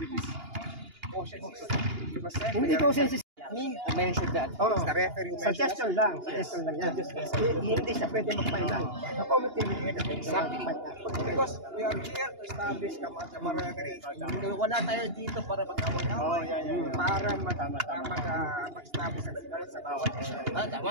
which is quotient system. Hindi quotient system. Me to mention that. The referee who mentioned Suggestion lang yan. Hindi siya pwede mag-final. The committee will get exactly. Because we are here to establish camaraderie. Wala tayo dito para mag-away-away. Para mag-establish ang sigaret sa bawat isa.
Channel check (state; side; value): late; left; 2.8 ms